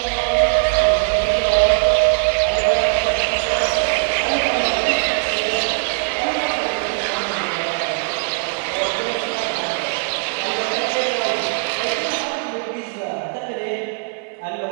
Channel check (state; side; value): quieter; left; 34.2 dB